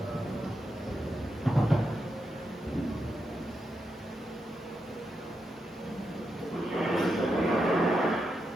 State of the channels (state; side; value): normal; both; correlation 0.85